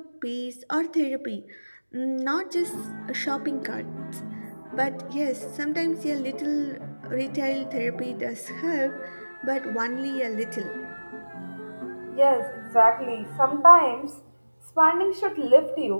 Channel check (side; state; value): both; inverted; correlation -1.00